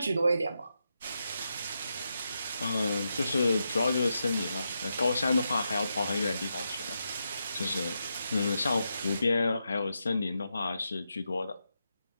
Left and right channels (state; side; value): inverted; both; correlation -0.85